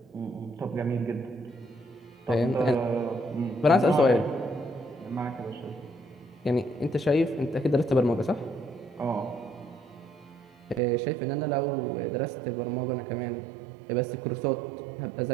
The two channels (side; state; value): left; drops out; at 10.8 s